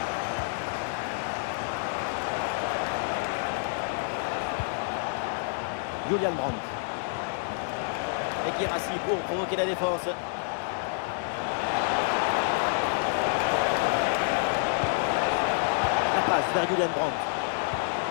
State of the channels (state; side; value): silent; right; 59 dB below the other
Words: Julian Brandt. Et Guirassy pour provoquer la défense. La passe vers Julian Brandt.